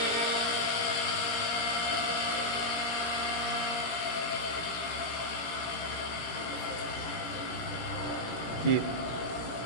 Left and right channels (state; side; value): late; right; 17 ms